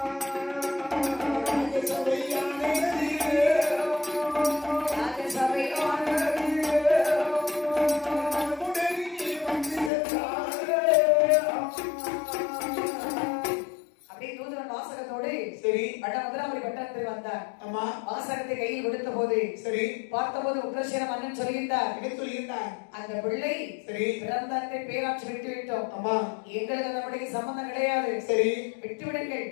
ஆமா வாசகத்தை கையில் கொடுத்த போது சரி பார்த்தபோது உக்ரசேன மன்னன் சொல்லியிருந்தார். என்ன சொல்லியிருந்தார்? அந்த பிள்ளை சரி பிறந்த அன்றை பேராட்சி விட்டு விட்டோம். ஆமா எங்களுக்கு நம்முடைய சம்பந்தம் கிடையாது. சரி விட்டு விடுங்கள்.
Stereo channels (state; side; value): drops out; right; at 9.9 s